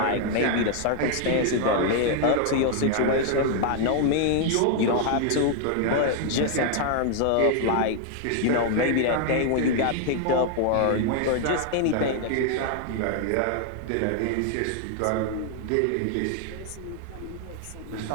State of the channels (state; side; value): different; both; correlation 0.00